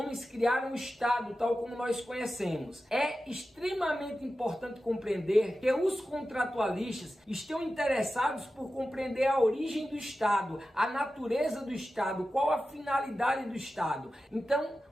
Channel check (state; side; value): normal; both; correlation 0.93